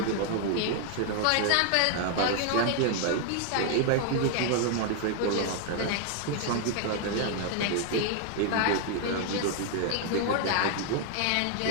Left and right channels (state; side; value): different; both; correlation 0.00